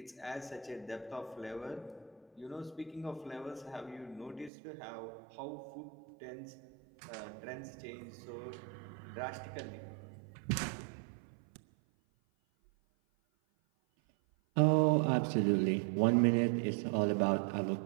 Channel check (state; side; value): drops out; left; at 4.5 s